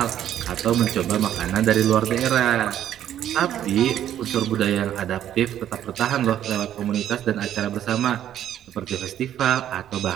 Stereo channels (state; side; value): quieter; left; 11.0 dB